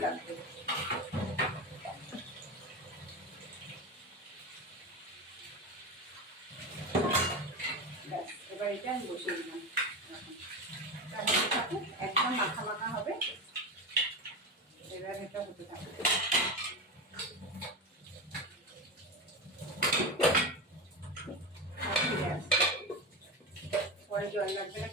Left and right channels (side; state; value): both; normal; correlation 0.21